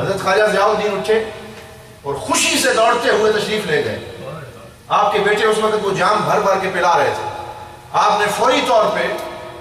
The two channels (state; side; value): identical; both; correlation 1.00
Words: خواجہ ضیاء الدین اٹھے اور خوشی سے دوڑتے ہوئے تشریف لے گئے۔ آپ کے بیٹے اس وقت وہ جام بھر بھر کے پلا رہے تھے۔ آپ نے فوری طور پہ،